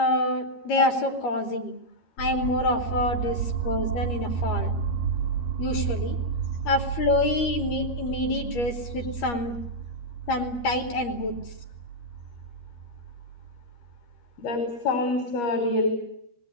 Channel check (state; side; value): late; right; 13 ms